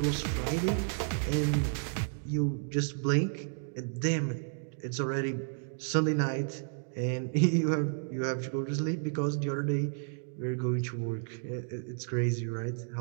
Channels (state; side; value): silent; left; digital silence